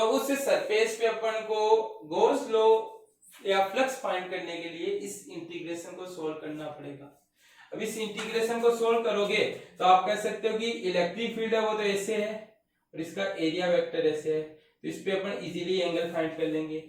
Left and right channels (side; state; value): both; identical; correlation 1.00